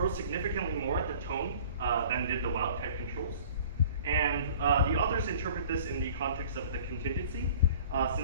significantly more at the tone than did the wild type controls. And the authors interpret this in the context of the contingency,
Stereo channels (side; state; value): both; inverted; correlation -0.47